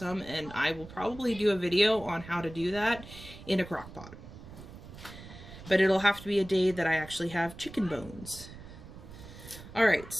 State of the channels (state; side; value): noise; right; rumble, 15 dB below the sound